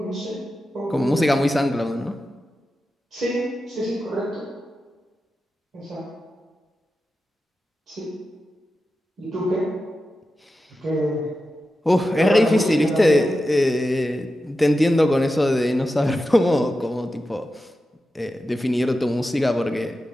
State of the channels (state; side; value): normal; both; correlation 0.91